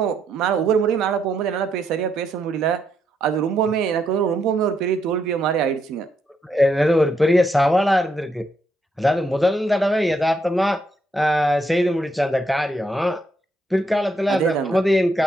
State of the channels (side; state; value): both; normal; correlation 0.77